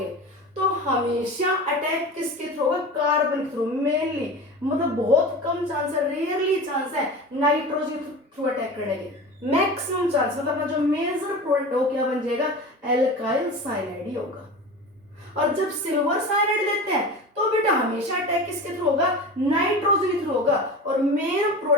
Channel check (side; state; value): both; normal; correlation 0.32